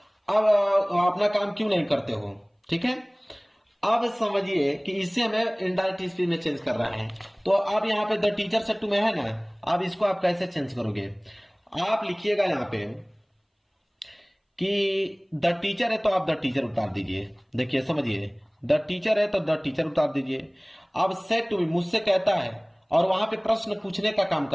अब अपना काम क्यों नहीं करते हो। ठीक है, अब समझिए कि इसे हमें इनडायरेक्ट स्पीच में चेंज कर रहा है। तो अब यहाँ पे द टीचर सेड टू में है ना, अब इसको आप कैसे चेंज करोगे, आप लिखिएगा यहाँ पे कि द टीचर है तो आप द टीचर उतार दीजिए। देखिए समझिए, द टीचर है तो द टीचर उतार दीजिए। अब सेड टू मी, मुझसे कहता है, और वहां पे प्रश्न पूछने का काम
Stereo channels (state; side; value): identical; both; correlation 1.00